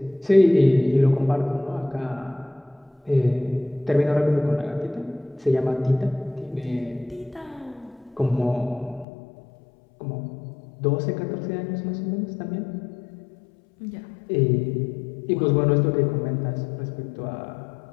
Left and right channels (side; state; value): right; drops out; at 9.1 s